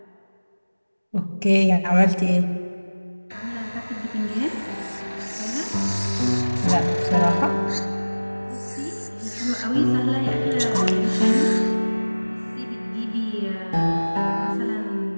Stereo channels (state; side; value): inverted; both; correlation -1.00